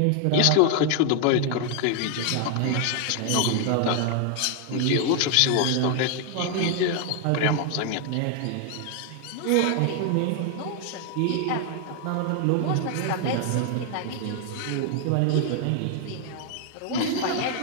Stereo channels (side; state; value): both; different; correlation 0.00